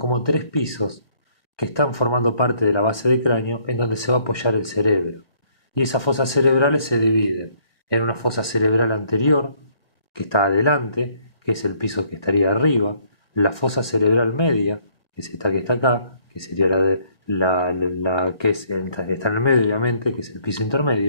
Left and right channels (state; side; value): late; right; 1.7 ms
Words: tres pisos que están formando parte de la base del cráneo en donde se va a apoyar el cerebro. Y esas fosas cerebrales se dividen en una fosa cerebral anterior, que está adelante, que es el piso que estaría arriba, la fosa cerebral media, que es esta que está acá, que sería la que está en el medio, obviamente, que es el piso